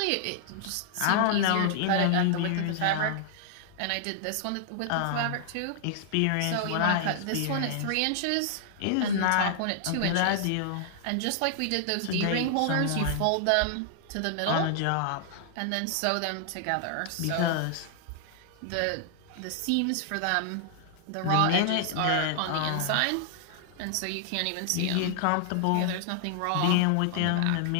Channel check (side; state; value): both; different; correlation -0.01